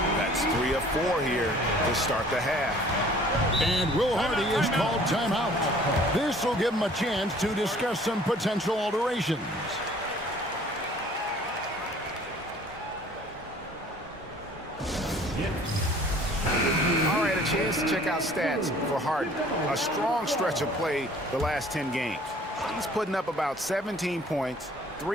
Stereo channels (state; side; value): normal; both; correlation 0.53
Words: That's 3 of 4 here to start the half. And Will Hardy is called timeout. This will give him a chance to discuss some potential alterations. All right, a chance to check out stats for Harden. A strong stretch of play the last 10 games. He's putting up about 17 points,